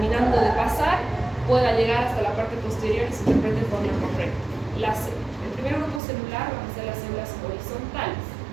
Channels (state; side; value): drops out; left; at 6.0 s